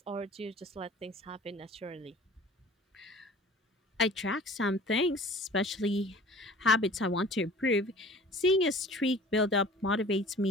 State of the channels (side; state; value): both; normal; correlation 0.45